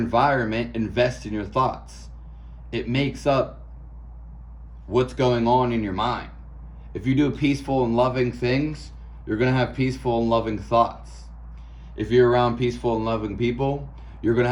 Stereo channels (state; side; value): identical; both; correlation 1.00